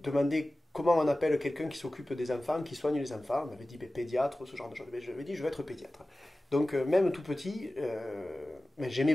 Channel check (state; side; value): normal; both; correlation 0.96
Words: comment on appelle quelqu'un qui s'occupe des enfants, qui soigne les enfants. On m'avait dit ben, pédiatre, ce genre de choses. Ben, j'avais dit je vais être pédiatre. Donc, même tout petit, mais j'aimais